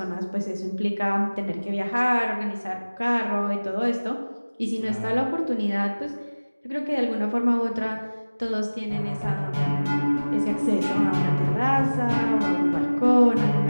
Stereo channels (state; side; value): inverted; both; correlation -1.00